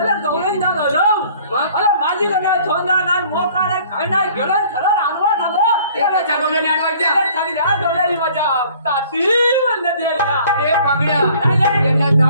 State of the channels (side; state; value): both; inverted; correlation -0.54